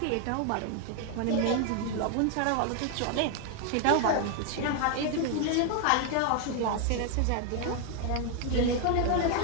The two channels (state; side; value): different; both; correlation 0.00